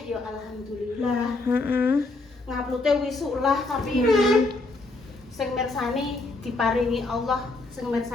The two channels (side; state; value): right; quieter; 3.2 dB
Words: ya alhamdulillah. Nguploadnya wisuk lah, tapi sing mirsani diparingi Allah, sing